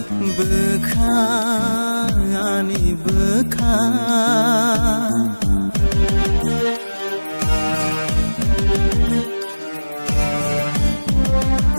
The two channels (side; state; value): both; inverted; correlation -1.00